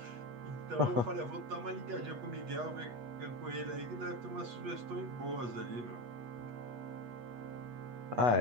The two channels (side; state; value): left; late; 8.3 ms